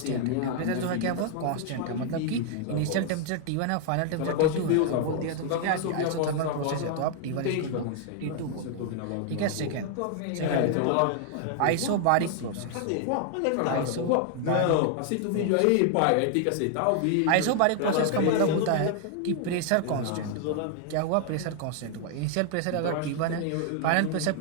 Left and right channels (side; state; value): both; different; correlation 0.00